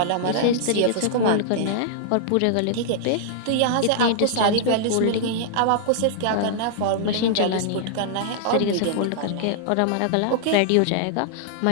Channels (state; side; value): different; both; correlation -0.01